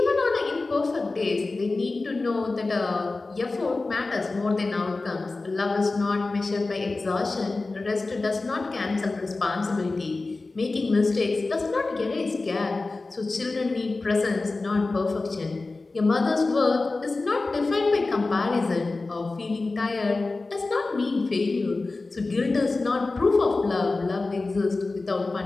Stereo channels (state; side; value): quieter; right; 3.5 dB